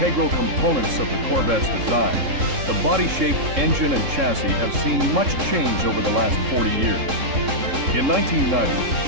components of the Corvette's design, the body shape, engine, and chassis have seen much change over the last 40 years. In 1990,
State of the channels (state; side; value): late; left; 3.7 ms